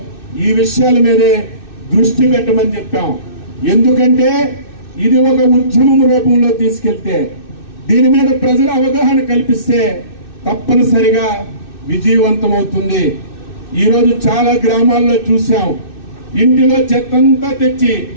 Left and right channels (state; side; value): late; right; 2.6 ms